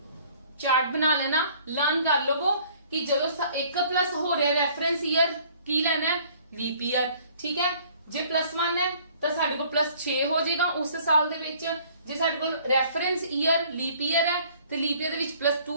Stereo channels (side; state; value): both; inverted; correlation -0.56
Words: ਚਾਰਟ ਬਣਾ ਲੈਣਾ, ਲਰਨ ਕਰ ਲਵੋ ਕਿ ਜਦੋਂ 1+ ਹੋ ਰਿਹਾ ਰੈਫਰੈਂਸ ਈਅਰ ਕੀ ਲੈਣਾ ਹੈ? ਲੀਪ ਈਅਰ, ਠੀਕ ਹੈ। ਜੇ +1 ਹੈ ਤਾਂ ਸਾਡੇ ਕੋਲ +6 ਹੋ ਜਾਏਗਾ ਉਸ ਸਾਲ ਦੇ ਵਿੱਚ। ਜੇ ਸਾਡੇ ਕੋਲ ਰੈਫਰੈਂਸ ਈਅਰ ਲੀਪ ਈਅਰ ਹੈ ਤੇ ਲੀਪ ਈਅਰ ਦੇ ਵਿੱਚ